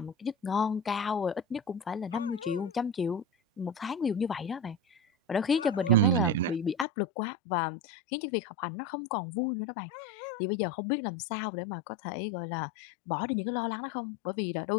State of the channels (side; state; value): right; drops out; at 6.9 s